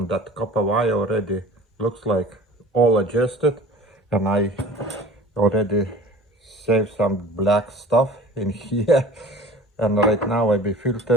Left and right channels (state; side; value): normal; both; correlation 0.43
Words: that copper wire already looks like all adjusted, and I already saved some black stuff in here. And right now I be